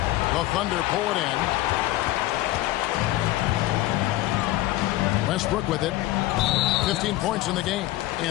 Thunder pull it in. Westbrook with it. 15 points in the game.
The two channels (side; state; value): right; quieter; 16.4 dB